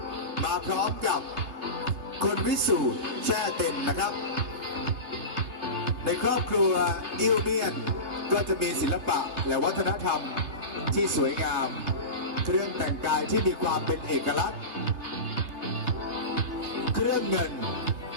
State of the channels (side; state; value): left; late; 3.2 ms